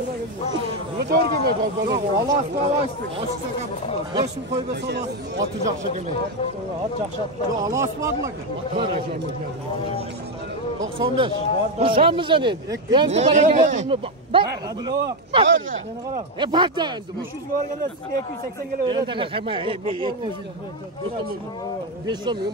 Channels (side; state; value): both; normal; correlation 0.07